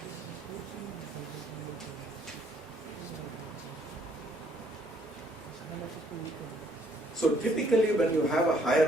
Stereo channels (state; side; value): normal; both; correlation 0.65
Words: So typically when you have a higher